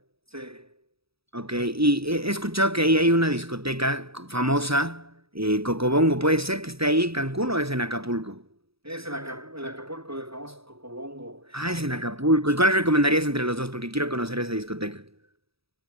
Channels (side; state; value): left; late; 0.77 ms